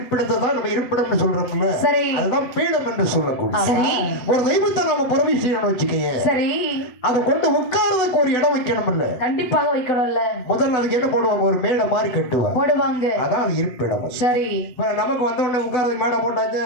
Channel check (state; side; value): late; right; 8.0 ms